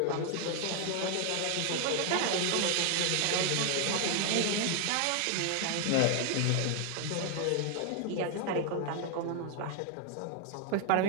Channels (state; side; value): different; both; correlation 0.00